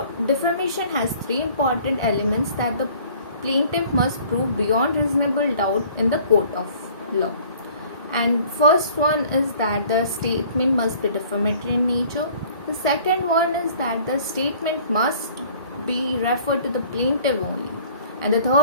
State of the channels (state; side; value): inverted; both; correlation -0.53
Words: defamation has three important elements that the plaintiff must prove beyond reasonable doubt in the court of law. And first one is that the statement must be defamatory in nature. The second one is that the statement must be referred to the plaintiff only. And the